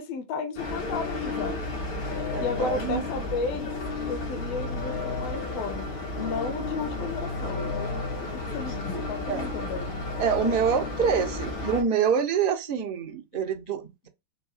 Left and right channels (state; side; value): late; right; 7.9 ms